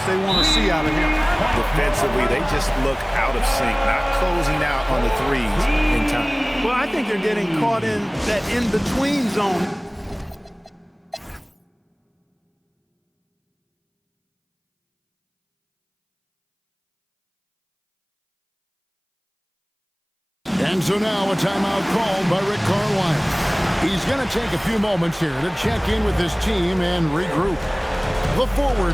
they want to see out of him. Defensively, they just look out of sync, not closing out on the threes in time. Well, I think they're getting caught in that in-between zone. And so now a timeout called by Rick Carlisle. He's going to take a few moments here to check in with his team and regroup. The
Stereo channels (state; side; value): identical; both; correlation 1.00